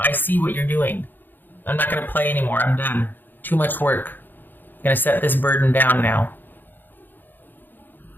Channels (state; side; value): late; right; 0.091 ms